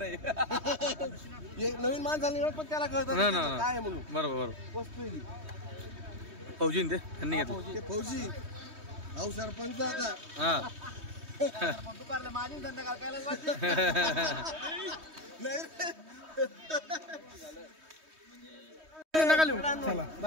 नवीन माणसाला पण त्याला कळतं काय म्हणून बरोबर वस्तू फौजी ते त्यांनी घेतलं फौजी अहो सरपंच आता हा दुपारला माझी धंदा करायला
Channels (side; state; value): left; late; 3.2 ms